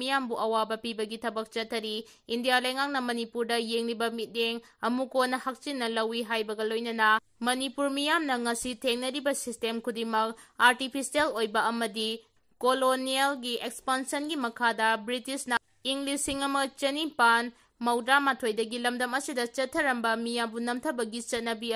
ꯑꯋꯥꯕ ꯄꯤꯕꯒꯤ ꯊꯕꯛ ꯆꯠꯊꯔꯤ꯫ ꯏꯟꯗꯤꯌꯥ ꯂꯩꯉꯥꯛꯅ ꯃꯅꯤꯄꯨꯔꯗ ꯌꯦꯡꯂꯤꯕ ꯃꯤꯠꯌꯦꯡ ꯑꯃꯨꯛꯀꯣꯅ ꯍꯛꯆꯤꯟꯅ ꯂꯧꯏ ꯍꯥꯏꯕꯒ ꯂꯣꯏꯅꯅ ꯃꯅꯤꯄꯨꯔ ꯃꯤꯌꯥꯝꯅ ꯉꯁꯤ ꯊꯦꯡꯅꯔꯤꯕ ꯁꯤꯁꯇꯦꯝ ꯈꯨꯗꯤꯡꯃꯛ ꯑꯥꯔꯇꯤꯐꯤꯁꯤꯌꯦꯜ ꯑꯣꯏꯕ ꯑꯃꯗꯤ ꯀꯣꯂꯣꯅꯤꯌꯦꯜꯒꯤ ꯑꯦꯛꯁꯄꯥꯟꯁꯟꯒꯤ ꯃꯈꯥꯗ ꯕ꯭ꯔꯤꯇꯤꯁꯅ ꯏꯪ 1892ꯗꯒꯤ ꯂꯝꯗꯝ ꯑꯁꯤꯗ ꯆꯠꯊꯔꯝꯕ ꯃꯤꯌꯥꯝꯕꯨ ꯅꯝꯊꯕꯒꯤ ꯆꯠꯅꯕꯤ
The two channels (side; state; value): both; identical; correlation 1.00